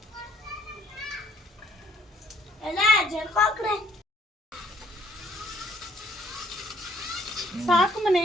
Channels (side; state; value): both; normal; correlation 0.63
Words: ಎಲ್ಲ ಜರ್ಕೋಕ್ರೆ ಸಾಕು